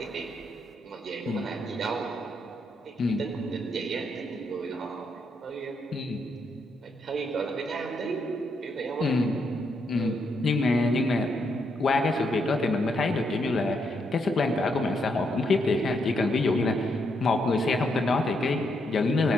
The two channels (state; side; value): normal; both; correlation 0.78